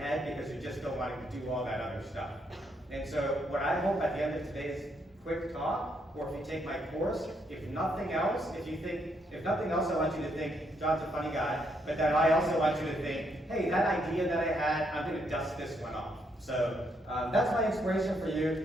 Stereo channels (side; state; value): both; normal; correlation 0.75